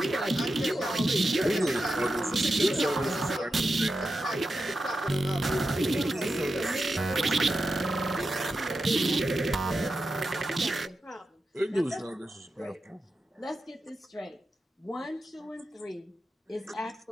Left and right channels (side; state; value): both; normal; correlation 0.90